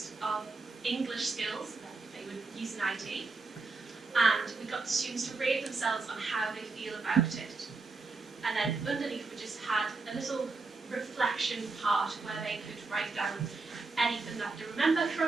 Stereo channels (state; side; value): quieter; left; 3.9 dB